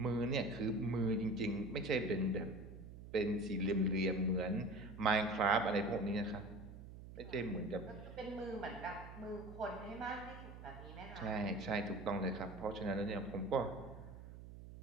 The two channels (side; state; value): right; noise; hum, 13 dB below the sound